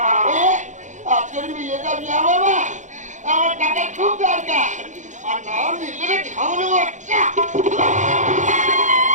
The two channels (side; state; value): left; late; 0.35 ms